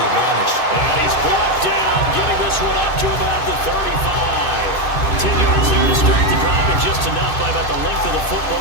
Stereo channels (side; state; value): right; late; 2.6 ms